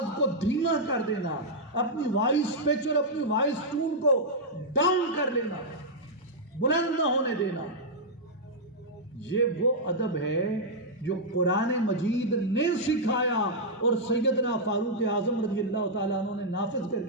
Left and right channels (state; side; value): normal; both; correlation -0.07